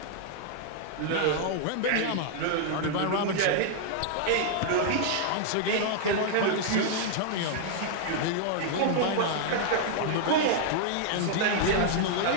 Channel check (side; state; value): both; different; correlation -0.01